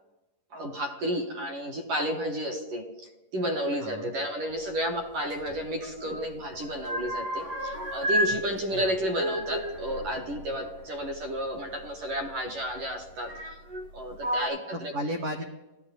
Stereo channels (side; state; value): left; late; 11 ms